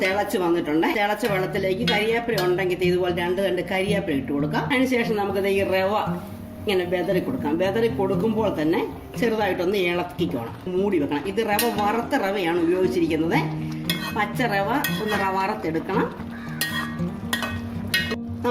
തിളച്ച് വന്നിട്ടുണ്ട്. തിളച്ച വെള്ളത്തിലേക്ക് കരിവേപ്പില ഉണ്ടെങ്കിൽ ഇതുപോലെ 2 തണ്ട് കരിവേപ്പില ഇട്ട് കൊടുക്കാം. അതിനുശേഷം നമുക്ക് ഈ റവ ഇങ്ങനെ വെതറി കൊടുക്കാം. വെതറി കൊടുക്കുമ്പോൾ തന്നെ ചെറുതായിട്ടൊന്ന് ഇളക്കിക്കോണം. മൂടി വെക്കണം. ഇത് റവ വറുത്ത റവയാണ് ഉപയോഗിച്ചിരിക്കുന്നത്. പച്ച റവ ഒന്ന് വറുത്തെടുക്കണം.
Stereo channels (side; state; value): both; identical; correlation 1.00